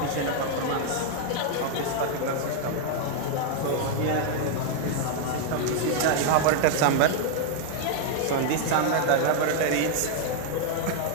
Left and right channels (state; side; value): different; both; correlation 0.00